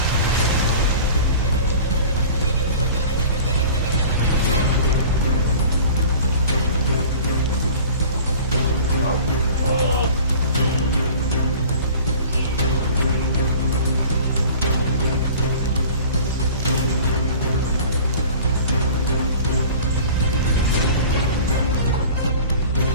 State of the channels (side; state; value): both; inverted; correlation -0.42